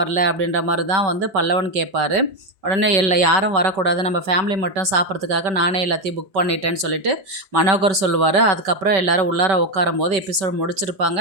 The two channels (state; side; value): late; left; 5.2 ms